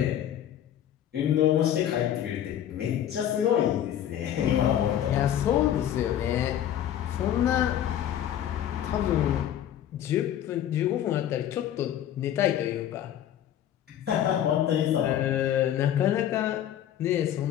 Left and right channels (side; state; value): right; quieter; 10.9 dB